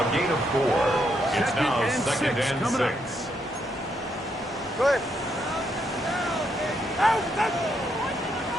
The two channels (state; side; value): normal; both; correlation 0.77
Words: gain of 4. It's now second and coming up. 6. Go ahead. Out, out.